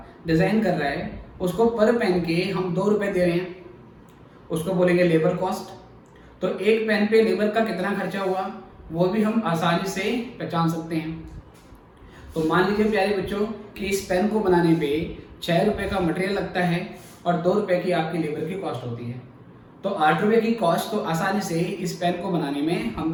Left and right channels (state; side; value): identical; both; correlation 1.00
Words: डिजाइन कर रहा है, उसको पर पेन के हम 2 रुपए दे रहे हैं, उसको बोलेंगे लेबर कॉस्ट। तो एक पेन पे लेबर का कितना खर्चा हुआ वो भी हम आसानी से पहचान सकते हैं। तो मान लीजिए प्यारे बच्चों कि इस पेन को बनाने पे 6 रुपए का मटेरियल लगता है और 2 रुपए की आपकी लेबर की कॉस्ट होती है। तो 8 रुपए की कॉस्ट तो आसानी से इस पेन को बनाने में